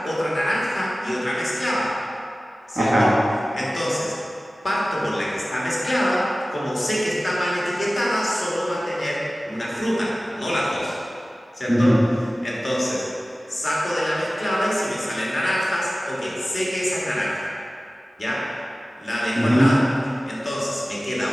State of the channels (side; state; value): both; normal; correlation 0.97